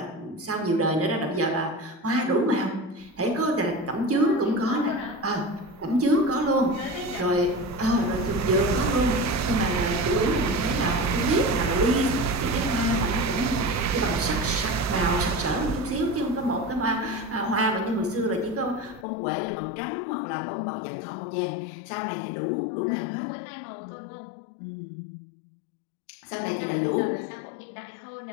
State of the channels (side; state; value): right; drops out; at 19.1 s